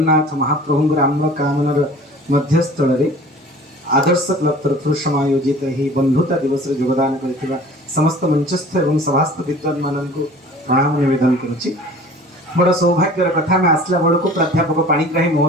महाप्रभुंकर आम्र कामनर मध्यस्थल रे आदर्श क्लब तरफ समायोजित ही बंधुता दिवस रे योगदान करथिबा समस्त मंचस्थ एवं सभास्थ विद्वान माननको प्रणाम निवेदन करुछि। बड़ सौभाग्यर कथा में आसला बड़को प्राध्यापक पाणिग्राही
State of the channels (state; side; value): normal; both; correlation 0.45